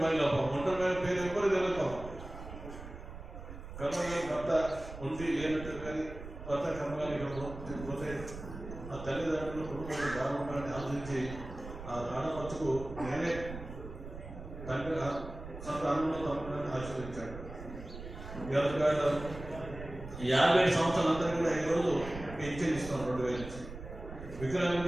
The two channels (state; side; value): noise; right; rumble, 11 dB below the sound